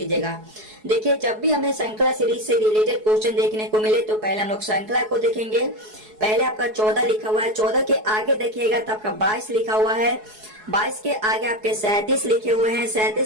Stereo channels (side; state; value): left; late; 4.7 ms